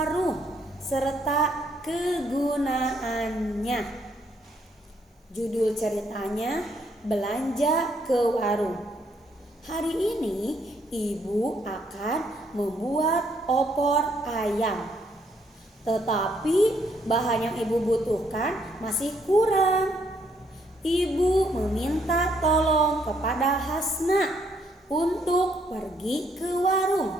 serta kegunaannya. Judul ceritanya belanja ke warung. Hari ini Ibu akan membuat opor ayam. Tetapi bahan yang Ibu butuhkan masih kurang. Ibu meminta tolong kepada Hasna untuk pergi ke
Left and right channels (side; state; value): both; normal; correlation 0.70